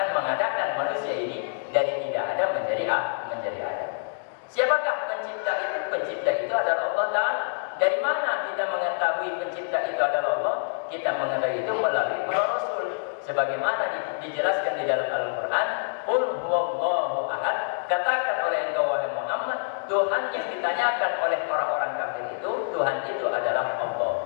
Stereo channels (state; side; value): silent; right; digital silence